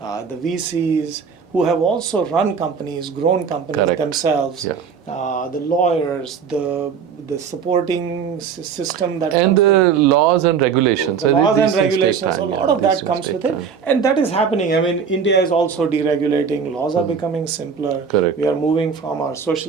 the VCs who have also run companies, grown companies themselves, the lawyers, the supporting system that and the laws and regulations. A lot of that comes with it, and that is happening. India is also deregulating. Laws are becoming simpler. Correct. We are moving from our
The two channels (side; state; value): left; quieter; 6.6 dB